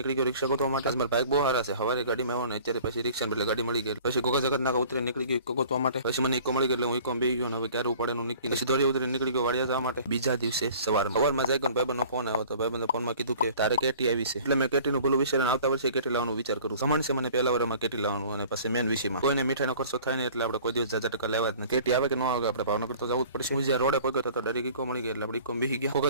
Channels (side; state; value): both; inverted; correlation -0.48